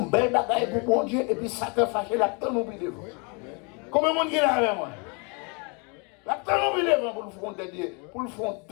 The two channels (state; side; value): quieter; right; 33.7 dB